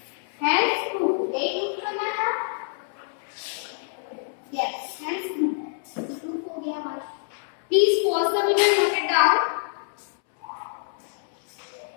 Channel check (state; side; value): silent; right; 61 dB below the other